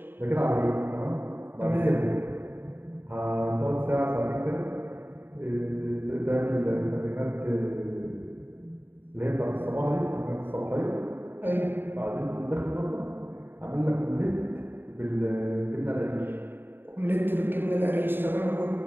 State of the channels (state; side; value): late; left; 0.097 ms